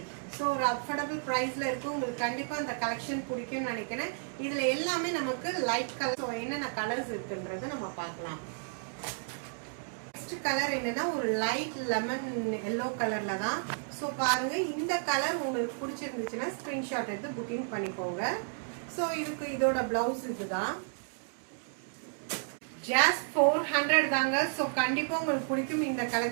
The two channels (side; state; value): left; silent; digital silence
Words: ஒரு அஃபோர்டபுள் பிரைஸ்ல இருக்கு. உங்களுக்கு கண்டிப்பா அந்த கலெக்ஷன் பிடிக்கும்னு நினைக்கிறேன். இதுல எல்லாமே நமக்கு லைட் கலர். என்னென்ன கலர்ஸ் இருக்குன்றத நம்ம பார்க்கலாம். நெக்ஸ்ட் கலர் என்னன்னா ஒரு லைட் லெமன் எல்லோ கலர்ல தான். பாருங்க இந்த கலர் உங்களுக்கு பிடிச்சிருந்துச்சுன்னா ஸ்கிரீன்ஷாட் எடுத்து புக்கிங் பண்ணிக்கோங்க. இதோட பிளவுஸ் இதுதான். ஜஸ்ட் 400 தாங்க. கண்டிப்பா உங்களுக்கு பிடிக்கும் இந்த